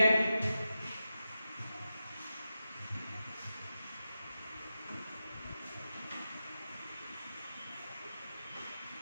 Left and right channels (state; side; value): inverted; both; correlation -0.91